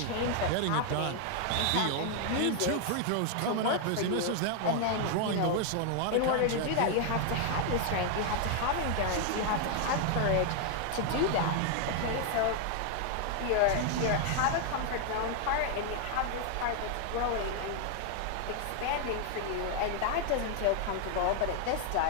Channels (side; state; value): both; different; correlation 0.00